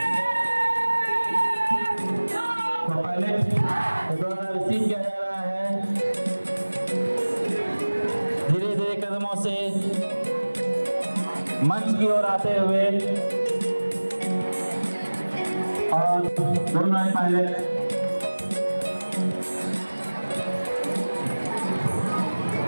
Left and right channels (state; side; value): inverted; both; correlation -1.00